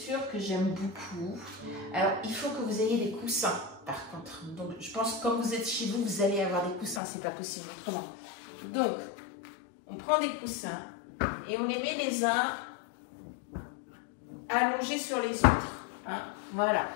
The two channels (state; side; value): drops out; right; at 7.0 s